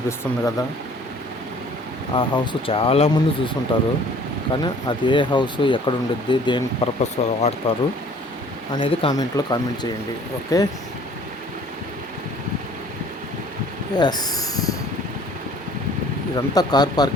కదా, ఆ హౌస్ చాలామంది చూసుంటారు. కానీ అది ఏ హౌస్, ఎక్కడ ఉండిద్ది, దేని పర్పస్ వాడతారు అనేది కామెంట్లో కామెంట్ చేయండి. ఓకే. ఎస్, ఇదంతా కార్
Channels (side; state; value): both; normal; correlation 0.53